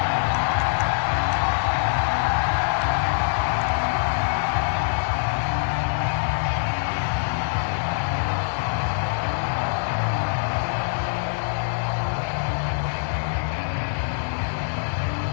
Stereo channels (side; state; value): right; silent; digital silence